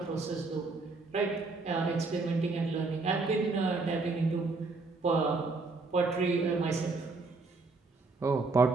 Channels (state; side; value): quieter; left; 3.8 dB